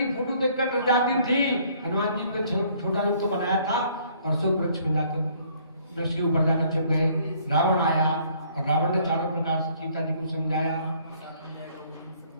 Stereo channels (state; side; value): inverted; both; correlation -0.61